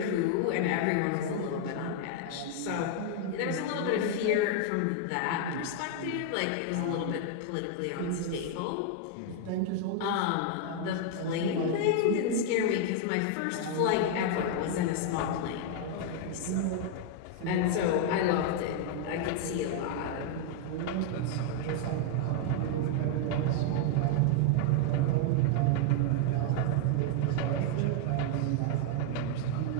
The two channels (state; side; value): different; both; correlation 0.00